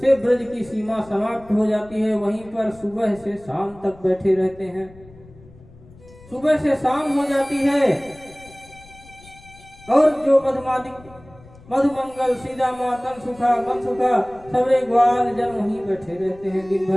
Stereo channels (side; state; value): left; noise; rumble, 23 dB below the sound